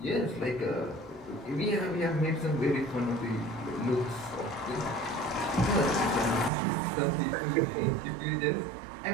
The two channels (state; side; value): drops out; left; at 6.5 s